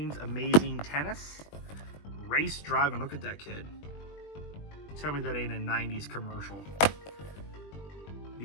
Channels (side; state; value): right; late; 20 ms